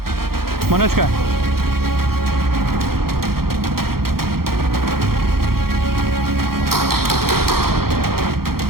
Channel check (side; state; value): left; late; 0.94 ms